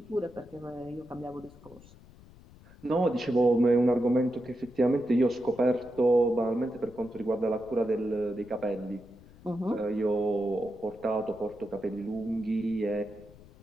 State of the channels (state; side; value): noise; left; rumble, 22 dB below the sound